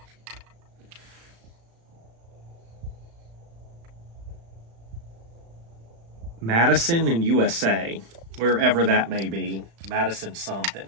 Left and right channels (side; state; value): left; late; 35 ms